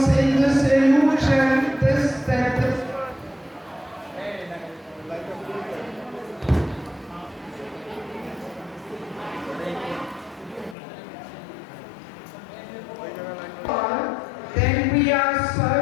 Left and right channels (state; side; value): drops out; right; at 10.8 s